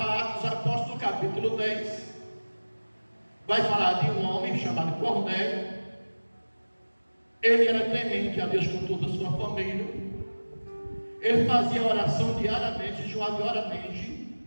Atos Apóstolos, capítulo 10. Vai falar de um homem chamado Cornélio. Ele era temente a Deus com toda a sua família. Ele fazia oração diariamente, jejuava diariamente.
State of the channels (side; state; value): both; inverted; correlation -1.00